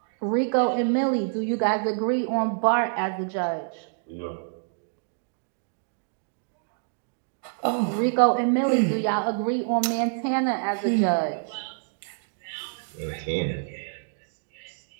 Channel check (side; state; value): left; silent; digital silence